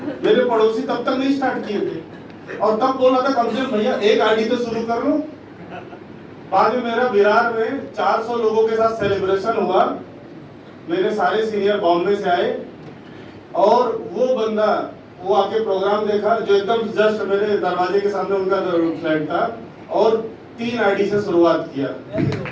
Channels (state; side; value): identical; both; correlation 1.00